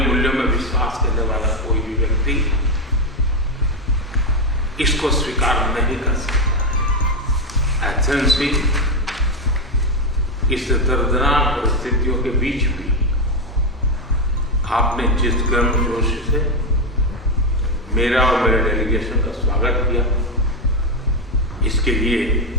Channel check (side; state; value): both; normal; correlation 0.08